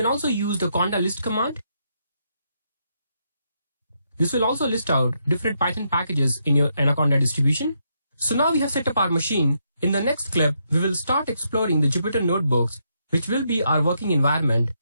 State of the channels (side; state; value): both; inverted; correlation -0.78